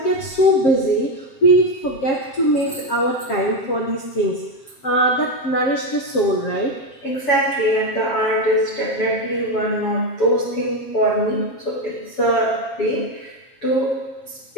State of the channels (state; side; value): late; right; 7.6 ms